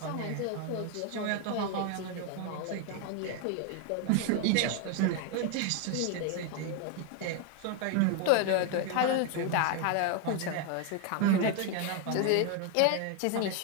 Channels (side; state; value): both; different; correlation 0.01